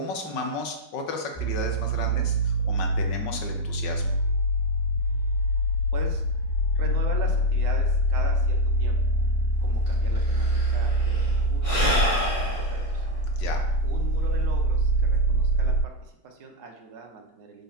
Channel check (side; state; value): right; late; 5.4 ms